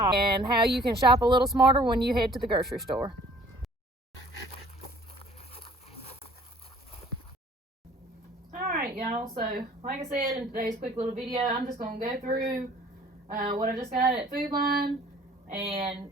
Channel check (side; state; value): both; normal; correlation 0.54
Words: and how you can shop a little smarter when you head to the grocery store. Alright y'all, so like I said in today's quick little video, I'm just going to go through what I just got at Food Line and